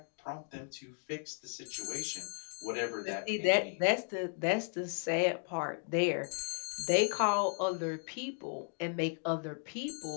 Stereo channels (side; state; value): right; silent; 54 dB below the other